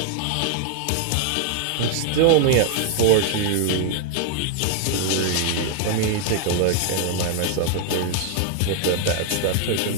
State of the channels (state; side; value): different; both; correlation 0.00